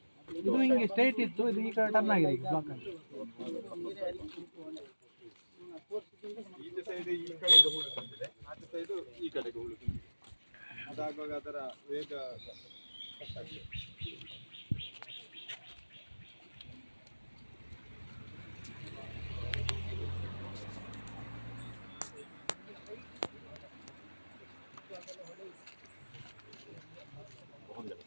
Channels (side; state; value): both; inverted; correlation -1.00